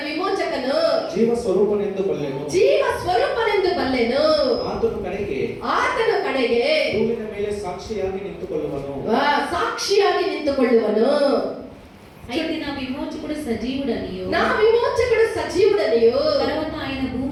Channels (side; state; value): both; identical; correlation 1.00